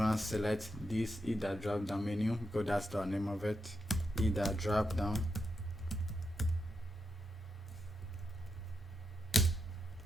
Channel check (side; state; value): both; normal; correlation 0.85